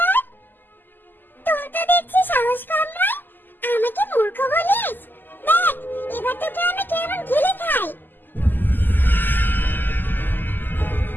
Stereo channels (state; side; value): late; right; 0.090 ms